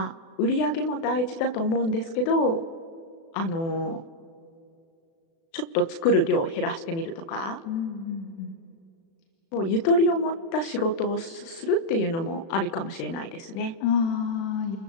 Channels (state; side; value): late; right; 36 ms